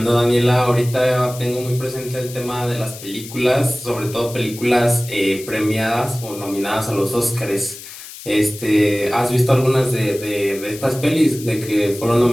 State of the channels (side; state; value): left; noise; hiss, 14 dB below the sound